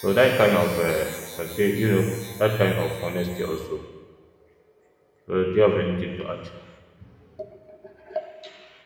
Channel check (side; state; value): both; identical; correlation 1.00